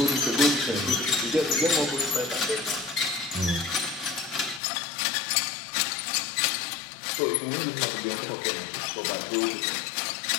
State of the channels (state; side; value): drops out; right; at 4.6 s